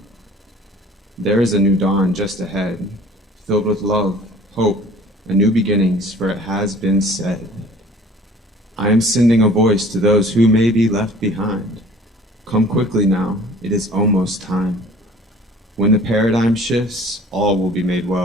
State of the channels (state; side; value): normal; both; correlation 0.50